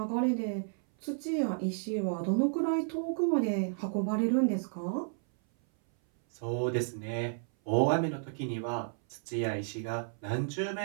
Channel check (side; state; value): left; silent; 56 dB below the other